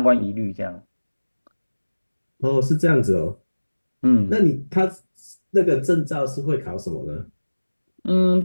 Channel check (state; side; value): inverted; both; correlation -1.00